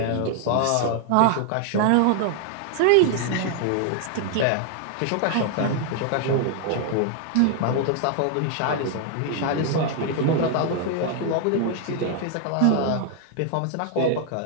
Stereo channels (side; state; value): both; different; correlation 0.00